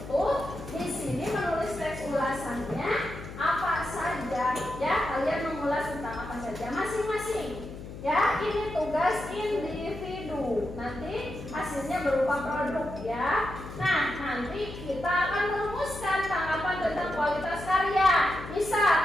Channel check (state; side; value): noise; left; hum, 11 dB below the sound